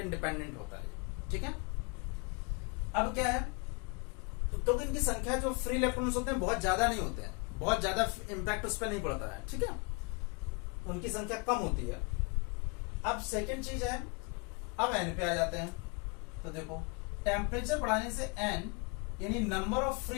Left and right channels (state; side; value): quieter; right; 32.5 dB